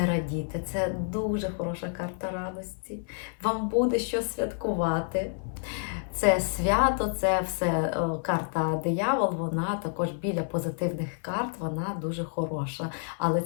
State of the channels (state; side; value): silent; right; 59 dB below the other